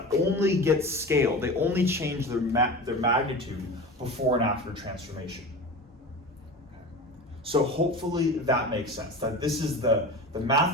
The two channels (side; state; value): both; normal; correlation 0.31